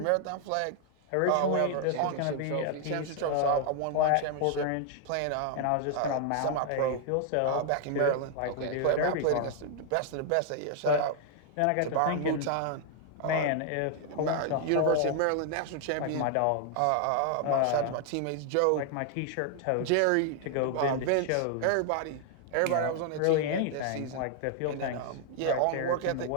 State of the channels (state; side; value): different; both; correlation 0.00